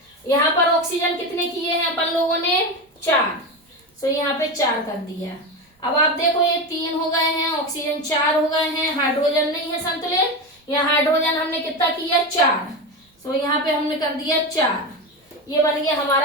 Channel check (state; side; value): normal; both; correlation 0.19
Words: यहाँ पर ऑक्सीजन कितने किए हैं अपन लोगों ने 4, तो यहाँ पे 4 कर दिया। अब आप देखो ये 3 हो गए हैं, ऑक्सीजन 4 हो गए हैं, हाइड्रोजन नहीं है संतुलित, यहाँ हाइड्रोजन हमने कितना किया 4, तो यहाँ पे हमने कर दिया 4, ये बन गया